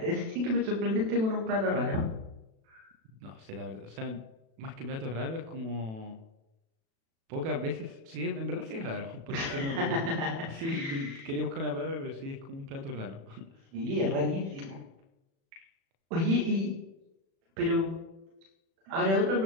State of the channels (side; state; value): left; late; 36 ms